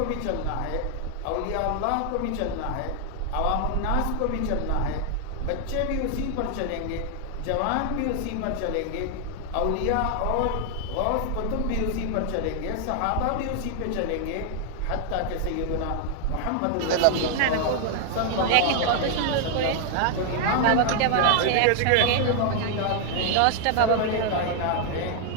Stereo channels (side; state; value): both; different; correlation 0.00